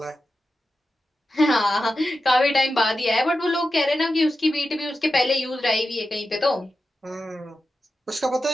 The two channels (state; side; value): normal; both; correlation 0.91